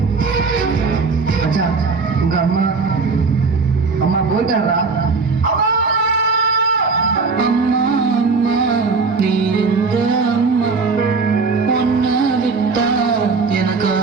மச்சான், உங்க அம்மா அம்மா போயிட்டாரா? அம்மா அம்மா, நீ எங்க அம்மா? உன்னை விட்டா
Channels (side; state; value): left; quieter; 4.6 dB